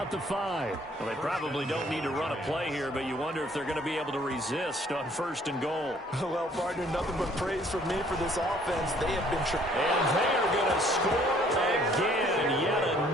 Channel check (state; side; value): normal; both; correlation 0.60